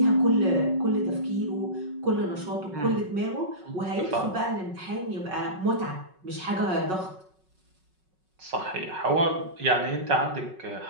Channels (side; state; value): left; late; 5.4 ms